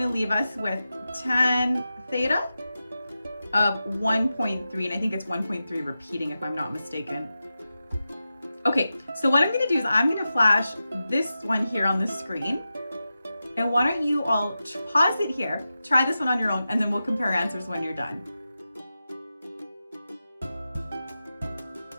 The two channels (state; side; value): inverted; both; correlation -0.92